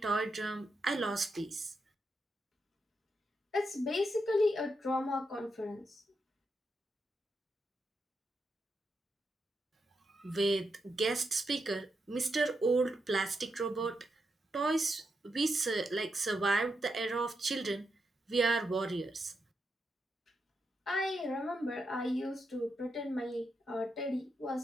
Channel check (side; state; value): both; normal; correlation 0.84